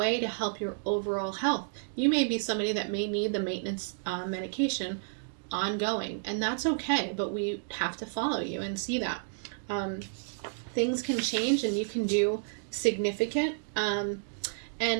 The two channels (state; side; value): silent; left; digital silence